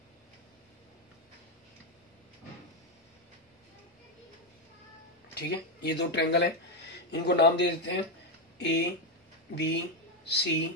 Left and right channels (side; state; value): both; normal; correlation 0.06